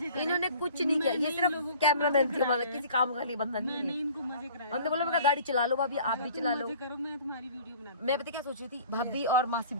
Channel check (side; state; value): both; inverted; correlation -0.47